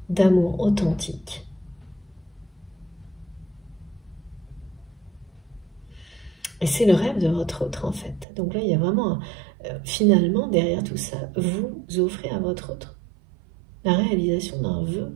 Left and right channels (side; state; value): left; drops out; at 8.2 s